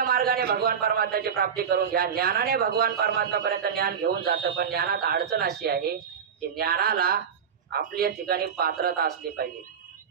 मार्गाने भगवान परमात्म्याची प्राप्ती करून घ्या. ज्ञानाने भगवान परमात्म्यापर्यंत ज्ञान घेऊन जातं. पण ज्ञानात अडचण अशी आहे की ज्ञानाला आपल्या ठिकाणी पात्रता असली पाहिजे.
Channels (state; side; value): quieter; left; 7.3 dB